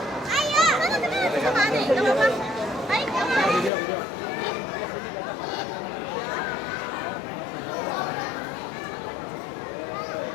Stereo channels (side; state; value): right; drops out; at 3.7 s